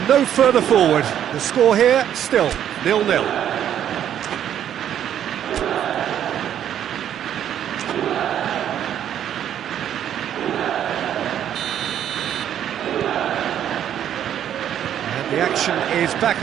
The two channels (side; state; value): left; quieter; 10.1 dB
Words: no further forward. The score here, still 0-0. The action is back